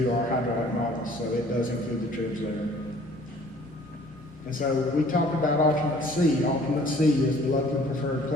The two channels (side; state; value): both; normal; correlation 0.54